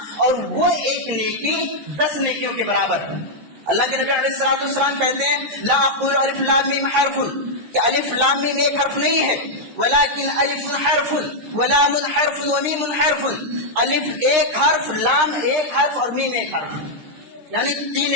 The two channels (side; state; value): left; late; 13 ms